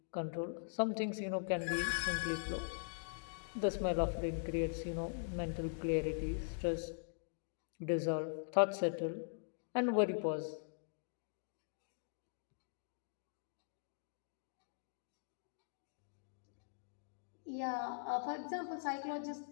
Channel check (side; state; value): right; silent; digital silence